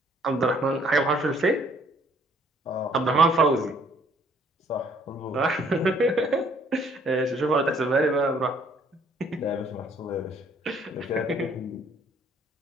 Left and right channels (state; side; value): normal; both; correlation 0.62